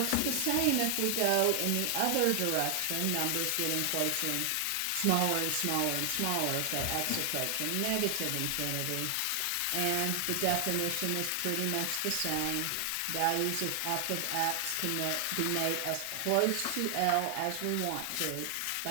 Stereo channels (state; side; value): different; both; correlation 0.00